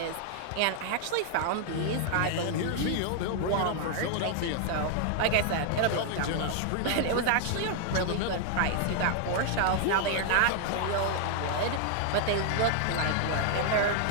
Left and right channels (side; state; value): both; different; correlation 0.00